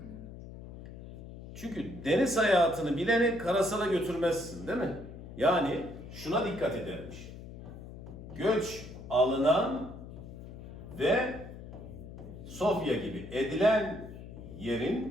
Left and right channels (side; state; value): left; noise; hum, 13 dB below the sound